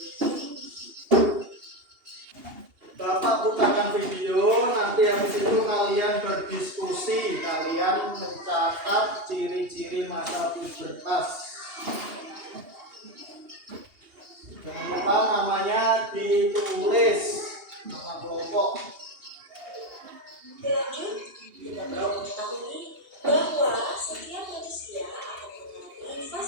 Bapak bukakan video, nanti habis itu kalian berdiskusi, kalian mencatat ciri-ciri masa pubertas. Jangan lupa namanya ditulis, nama kelompok. Lanjut, kita perlu mengetahui bahwa setiap manusia akan mengalami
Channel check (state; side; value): late; left; 2.8 ms